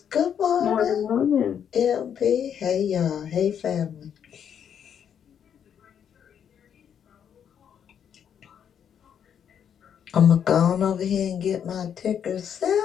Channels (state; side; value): quieter; right; 8.4 dB